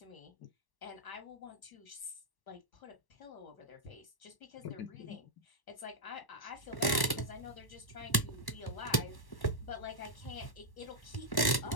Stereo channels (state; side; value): late; right; 1.1 ms